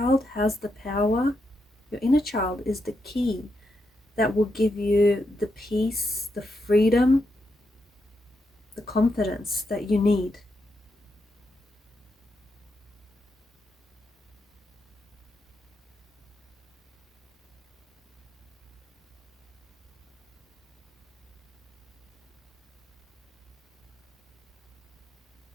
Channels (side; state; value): both; normal; correlation 0.83